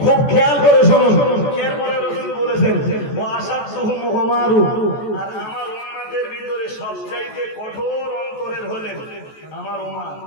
খুব খেয়াল করে শুনুন। এরপরে রাসূল বলেছেন ও আসাদুহুম উমারু, আর আমার উম্মতের ভিতরে সবচাইতে কঠোর অন্তরের হলেন আমার উমর।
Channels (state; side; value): late; right; 14 ms